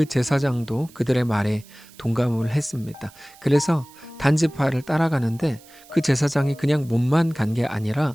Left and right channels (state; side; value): noise; right; hiss, 24 dB below the sound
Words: 제사장도 그들의 말에 동감을 했습니다. 그래서 단지파를 따라가는데 그 제사장이 그냥 몸만 간 게 아니라